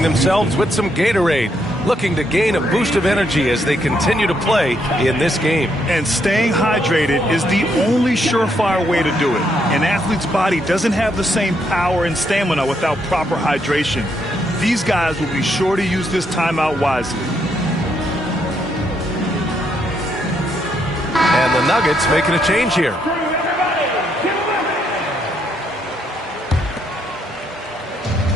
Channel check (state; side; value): normal; both; correlation 0.75